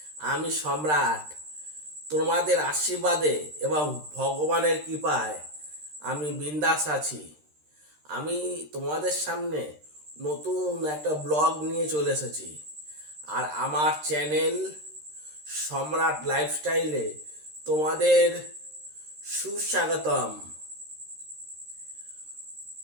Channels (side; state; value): left; late; 13 ms